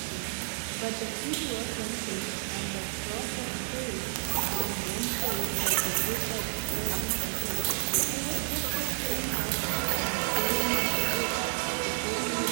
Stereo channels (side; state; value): left; silent; 58 dB below the other